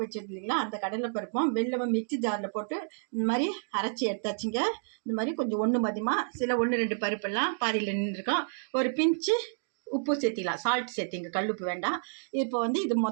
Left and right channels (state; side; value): silent; left; digital silence